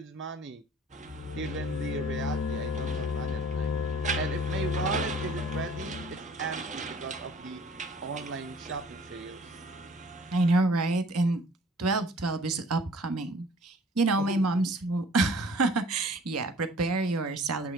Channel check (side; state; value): both; normal; correlation 0.51